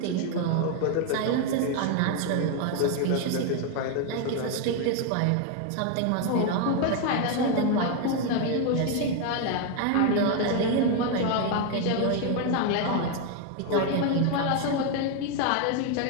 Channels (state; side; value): different; both; correlation 0.01